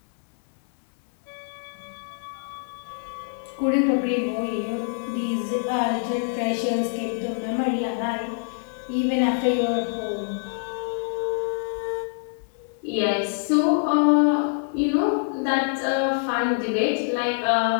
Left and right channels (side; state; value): right; silent; 62 dB below the other